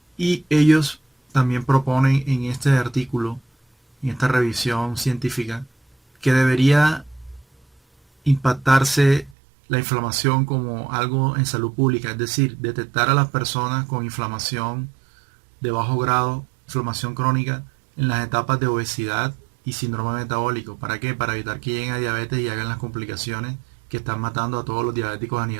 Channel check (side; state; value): left; drops out; at 9.3 s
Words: Y ellos también proponen en este artículo, en esta revisión científica, que debería impactarse la inflamación como algo en salud pública, es decir, detectar a las personas con inflamación de bajo grado, inflamación crónica, en las etapas de obesidad y síndrome metabólico. ¿Para qué? Para evitar que lleguen a diabetes y hagan las complicaciones que están matando a todos los diabéticos a